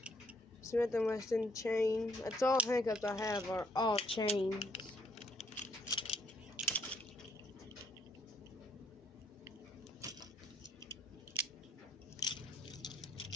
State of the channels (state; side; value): normal; both; correlation 0.67